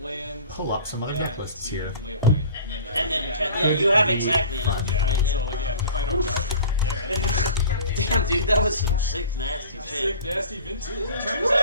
pull up some other deck lists to here. ley line, And then yeah, you have exactly enough. yeah. Right? So like if I don't dark, Damn, dude, that was some sick, nasty shit. sick, nasty vintage.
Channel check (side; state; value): both; inverted; correlation -0.42